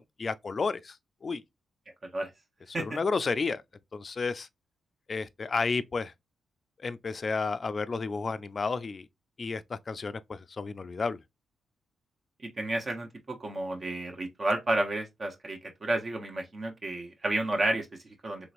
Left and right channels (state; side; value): normal; both; correlation 0.90